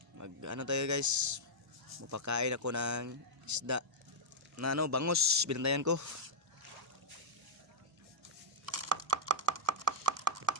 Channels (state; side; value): normal; both; correlation -0.06